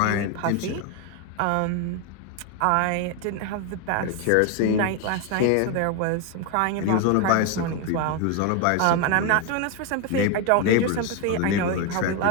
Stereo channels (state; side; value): different; both; correlation 0.01